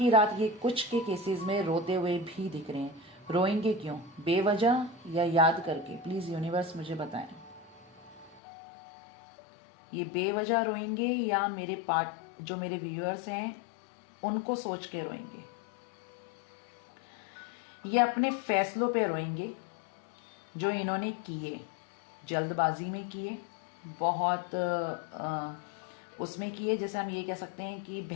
रात ये कुछ के केसेस में रोते हुए भी दिख रहे हैं। रोएंगे क्यों, बेवजह या याद करके? प्लीज यूनिवर्स मुझे बताएं, ये बेवजह रोएंगे या जो मेरे व्यूअर्स हैं उनको सोच के रोएंगे? ये अपने फैसलों पे रोएंगे जो इन्होंने किए, जल्दबाजी में किए, बहुत उसमें किए, जैसे हम ये कह सकते हैं कि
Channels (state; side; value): drops out; right; at 8.4 s